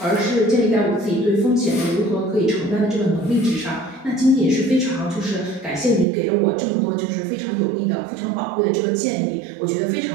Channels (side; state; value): left; drops out; at 6.1 s